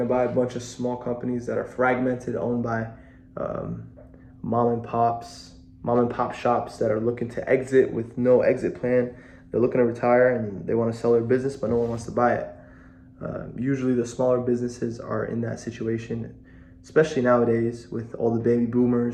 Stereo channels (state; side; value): identical; both; correlation 1.00